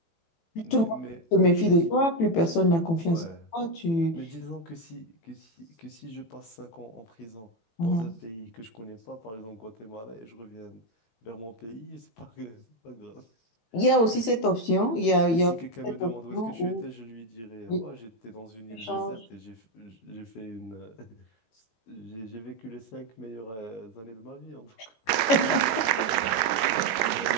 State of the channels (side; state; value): right; late; 18 ms